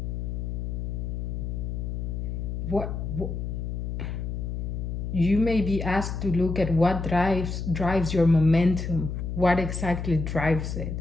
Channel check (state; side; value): noise; left; hum, 4 dB below the sound